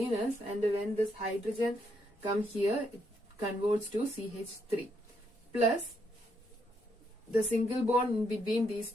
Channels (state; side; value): normal; both; correlation 0.75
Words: and when this hydrogen come here, it converts to CH3 plus the single bond between these